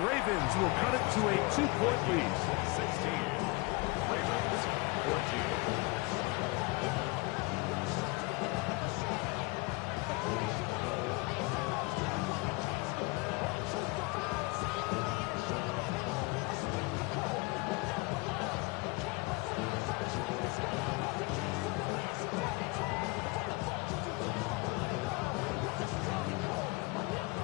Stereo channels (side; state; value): right; quieter; 26.0 dB